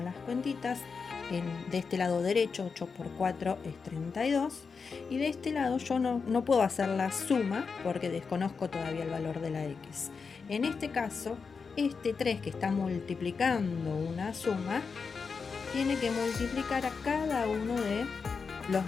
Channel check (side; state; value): right; quieter; 5.2 dB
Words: las cuentitas. De este lado derecho, 8 por 4 es 32. Y de este lado yo no puedo hacer la suma porque desconozco todavía el valor de la x. En este caso, este 3 que está multiplicando una suma, tiene que multiplicar a cada uno de los